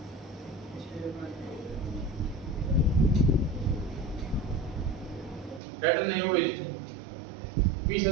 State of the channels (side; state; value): left; drops out; at 5.6 s